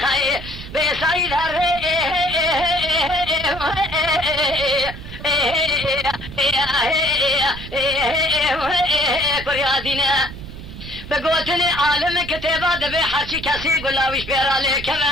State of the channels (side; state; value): right; noise; rumble, 12 dB below the sound